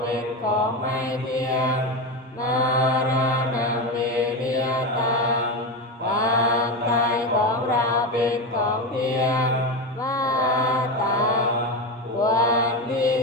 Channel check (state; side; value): normal; both; correlation 0.17